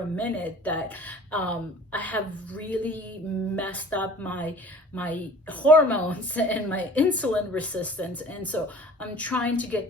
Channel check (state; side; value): normal; both; correlation 0.46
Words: minute that I have really messed up my hormones and my insulin resistance. And so I'm trying to get